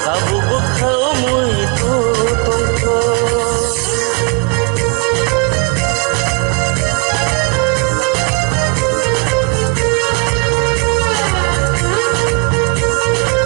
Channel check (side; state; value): left; quieter; 27.8 dB